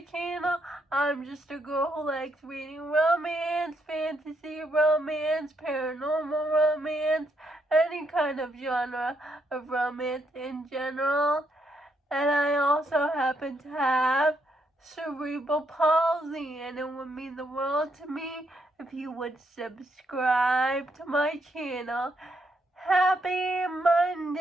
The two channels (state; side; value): normal; both; correlation 0.77